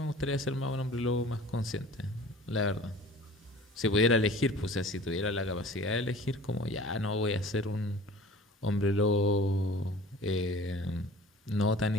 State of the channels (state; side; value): normal; both; correlation 0.45